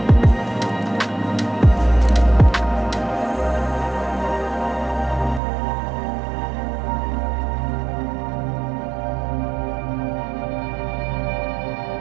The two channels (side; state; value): left; drops out; at 5.4 s